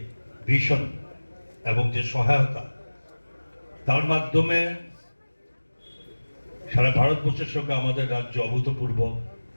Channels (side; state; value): both; inverted; correlation -1.00